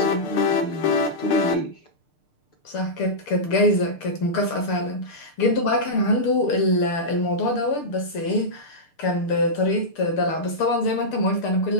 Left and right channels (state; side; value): late; right; 6.7 ms